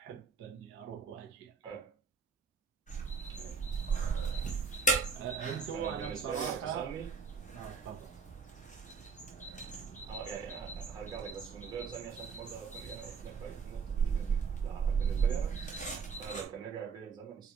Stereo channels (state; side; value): quieter; left; 5.5 dB